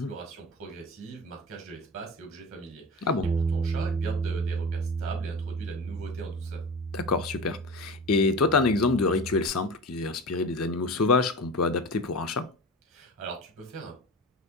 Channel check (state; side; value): normal; both; correlation 0.31